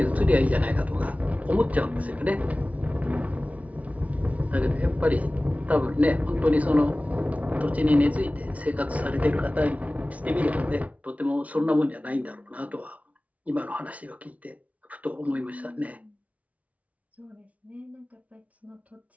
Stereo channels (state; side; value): late; left; 0.068 ms